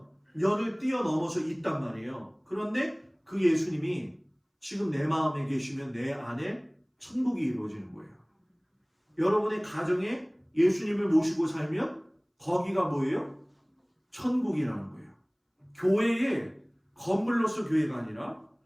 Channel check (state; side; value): identical; both; correlation 1.00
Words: 뛰어넘어서 있단 말이에요. 그런데 그 예수님이 지금 내 마음에 계시면 내 안에 천국이 이루어지는 거예요. 여러분의 가정에 예수님을 모시고 살면 거기가 뭐예요? 천국이라는 거예요. 교회에 건물로서 교회가 아니라